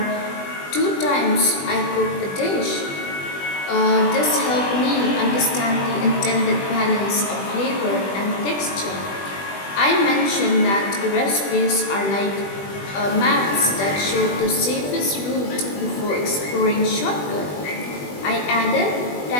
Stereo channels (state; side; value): late; right; 20 ms